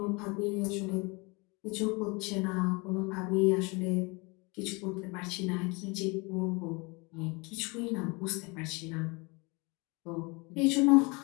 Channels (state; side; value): quieter; right; 28.1 dB